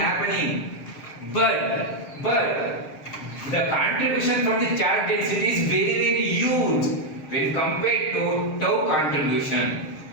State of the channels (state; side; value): late; right; 6.5 ms